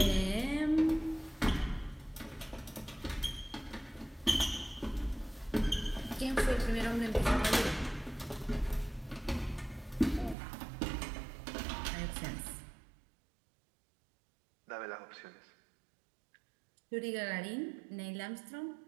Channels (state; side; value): drops out; left; at 10.4 s